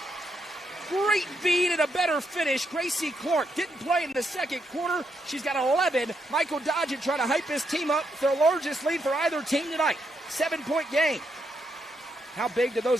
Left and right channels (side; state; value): both; normal; correlation 0.80